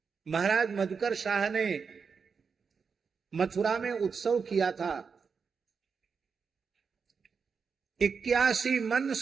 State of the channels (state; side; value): quieter; left; 5.7 dB